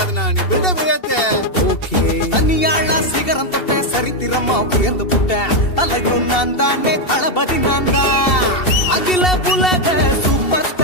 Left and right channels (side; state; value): right; late; 2.7 ms